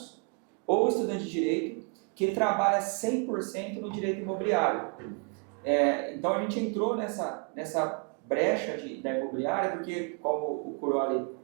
ou estudantes de direito que trabalham 100% no direito imobiliário. Então a gente entrou nessa brecha da imobiliária, porque como o Curoli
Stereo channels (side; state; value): left; quieter; 36.9 dB